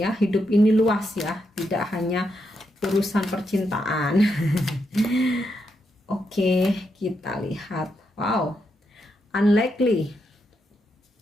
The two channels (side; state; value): both; normal; correlation 0.82